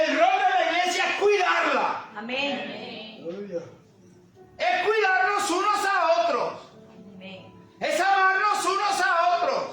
rol de la iglesia es cuidarla. Amén. Es cuidarnos unos a otros. Amén.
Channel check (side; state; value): both; identical; correlation 1.00